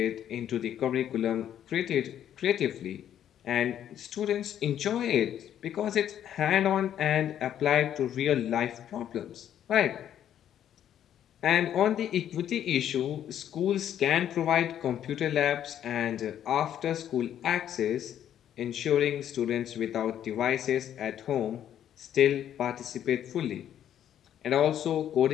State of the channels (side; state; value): right; quieter; 10.4 dB